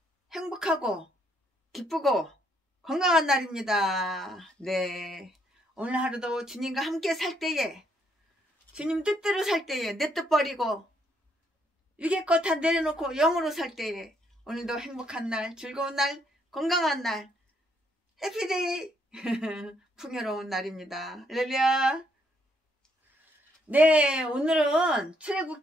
행복하고 기쁘고 건강한 날입니다. 네, 오늘 하루도 주님과 함께 살 때에, 주님 뜻대로 살 때에, 내 뜻 버리고 위계 것 다 내려놓고 영으로 살 때에 오늘도 행복한 날, 즐거운 날, 건강한 날, 해피데이 풍요로운 날입니다. 할렐루야. 네, 오늘은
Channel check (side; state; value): both; normal; correlation 0.71